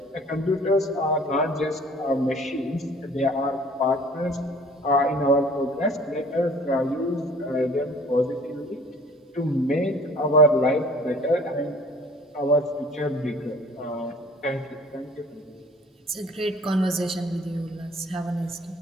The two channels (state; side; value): normal; both; correlation 0.50